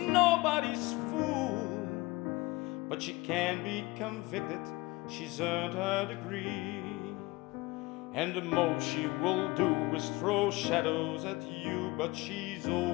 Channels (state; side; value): quieter; right; 22.3 dB